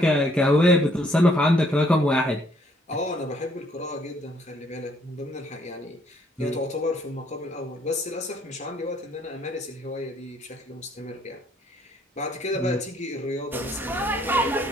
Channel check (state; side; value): normal; both; correlation 0.66